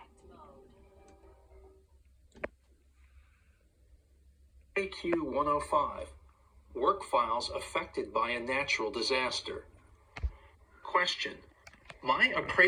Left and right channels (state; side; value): identical; both; correlation 1.00